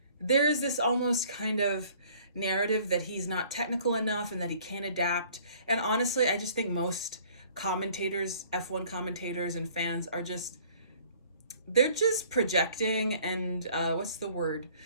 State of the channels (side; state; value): both; inverted; correlation -0.55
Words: almost kind of narrative that he's not technical enough and that he can't adapt. And honestly, I just think most commentators, F1 commentators and fans are just, they're just projecting and what's the word?